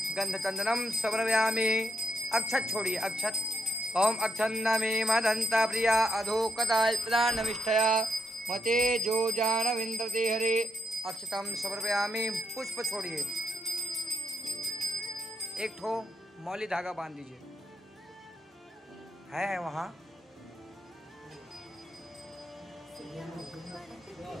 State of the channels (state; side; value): normal; both; correlation 0.78